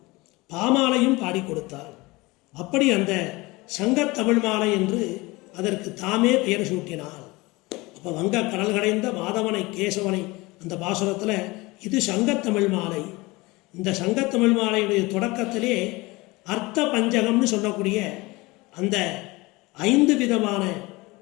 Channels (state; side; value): quieter; right; 22.7 dB